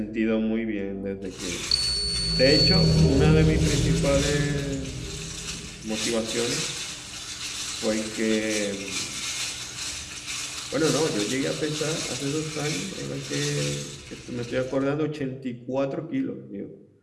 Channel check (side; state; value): both; identical; correlation 1.00